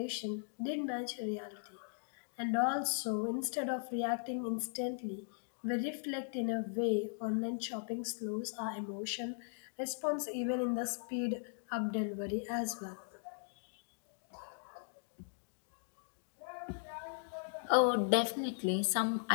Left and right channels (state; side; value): silent; right; digital silence